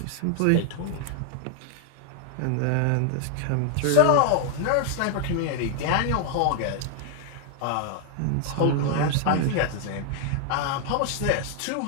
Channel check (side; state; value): both; different; correlation 0.00